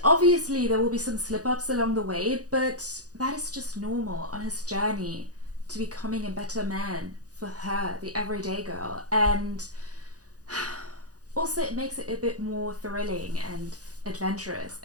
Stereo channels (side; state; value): left; late; 0.67 ms